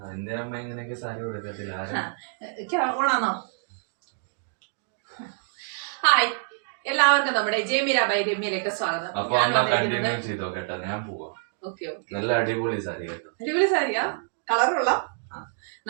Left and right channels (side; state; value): left; silent; digital silence